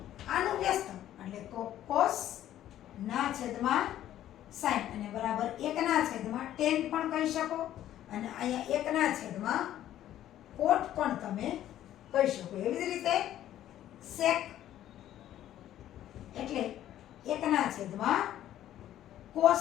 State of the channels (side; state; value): right; quieter; 12.3 dB